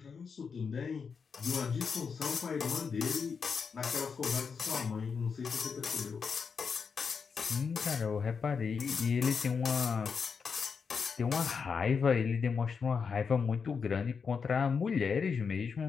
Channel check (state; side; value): quieter; right; 5.8 dB